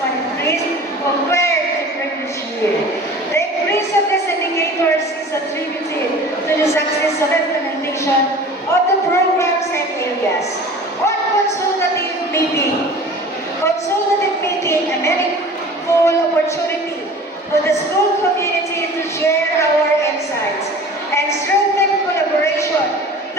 increase compared to previous year. The increase of these indicators is attributed to the successful implementation of the programs and areas. On consultative meeting, a meaningful opportunity for the school community to share our insights and strengthen collaboration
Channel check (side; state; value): both; normal; correlation 0.41